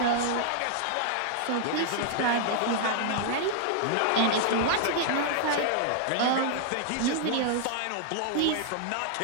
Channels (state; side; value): different; both; correlation -0.01